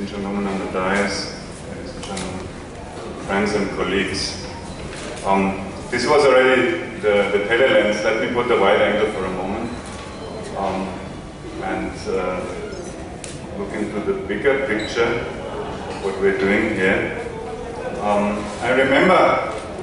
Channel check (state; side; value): identical; both; correlation 1.00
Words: gentlemen on the dais, ladies and gentlemen, friends and colleagues. This was already the telelens. Let me put the wide angle for a moment and look into the bigger picture of what we're doing here. I remember